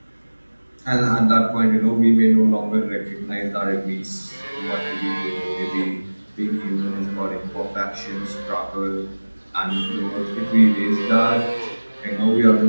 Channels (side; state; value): both; inverted; correlation -1.00